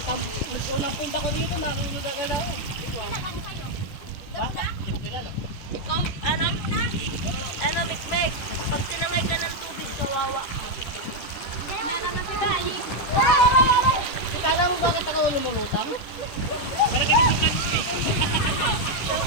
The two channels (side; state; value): right; late; 10 ms